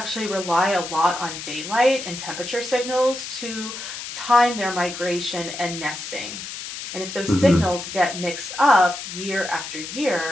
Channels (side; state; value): left; noise; hiss, 9 dB below the sound